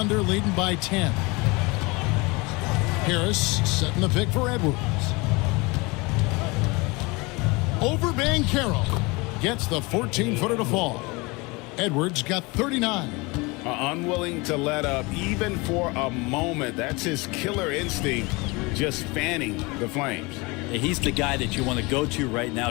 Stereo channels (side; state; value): right; quieter; 25.7 dB